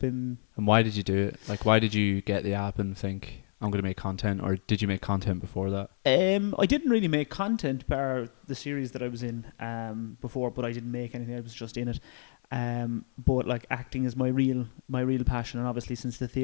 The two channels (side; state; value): right; silent; 58 dB below the other